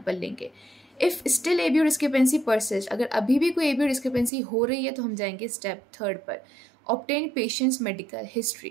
लेंगे। If still ABO discrepancy persist, अगर अभी भी कोई एबीओ डिस्क्रिपेंसी हो रही है तो हम जाएंगे स्टेप 3 पर, obtain patients medical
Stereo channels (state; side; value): drops out; left; at 4.3 s